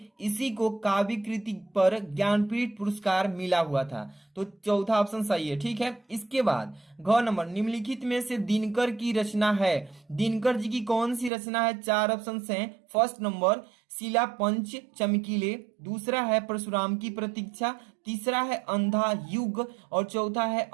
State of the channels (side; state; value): left; drops out; at 11.3 s